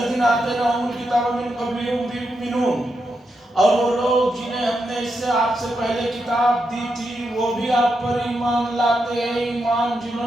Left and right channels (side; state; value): both; normal; correlation 0.84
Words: آتیناہم الکتاب من قبلہ ہم بہ یؤمنون، اور وہ لوگ جنہیں ہم نے اس سے آپ سے پہلے کتاب دی تھی وہ بھی آپ پر ایمان لاتے ہیں. ایمان جنہوں